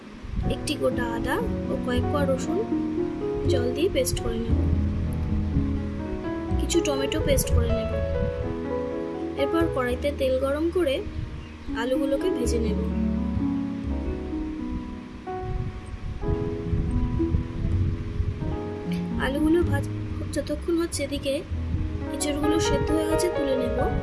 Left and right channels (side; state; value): both; identical; correlation 1.00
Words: 1টি গোটা আদা ও কয়েক কোয়া রসুন জল দিয়ে পেস্ট করে নেব। কিছু টমেটো পেস্ট করে নেব। এরপর কড়াইতে তেল গরম করে আলুগুলোকে ভেজে নেব। আলুগুলো যতক্ষণ হচ্ছে এদিকে এঁচোড়গুলো সেদ্ধ হয়ে গেছে তুলে নেব।